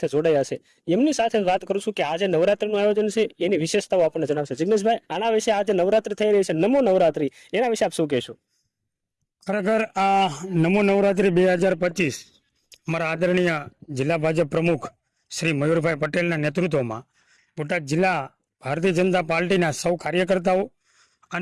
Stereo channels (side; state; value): both; identical; correlation 1.00